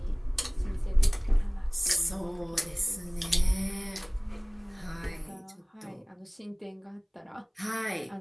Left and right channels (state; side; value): identical; both; correlation 1.00